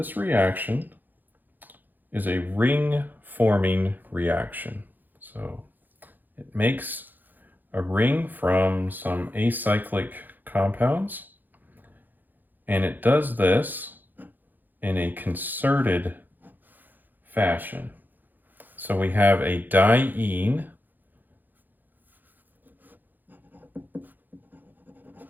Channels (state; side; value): late; left; 0.087 ms